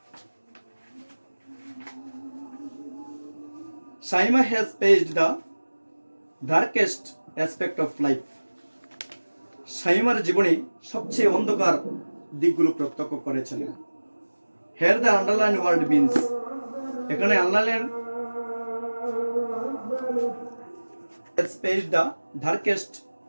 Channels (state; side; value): inverted; both; correlation -1.00